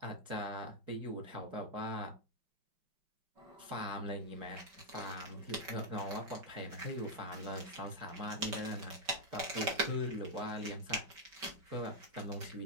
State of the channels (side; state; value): left; late; 5.3 ms